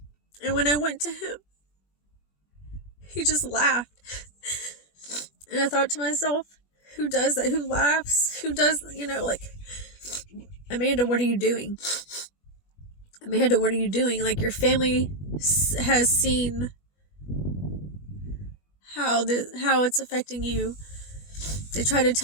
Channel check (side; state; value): right; late; 21 ms